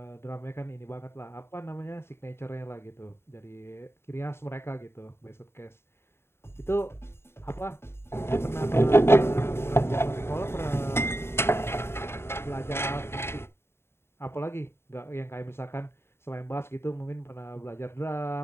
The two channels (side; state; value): right; late; 0.12 ms